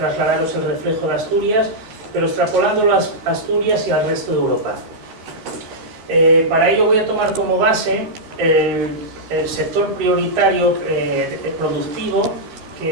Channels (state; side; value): late; left; 13 ms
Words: el reflejo de Asturias, pero extrapolándolo a Asturias y al resto de Europa. Para ello voy a tomar como base el sector prioritario productivo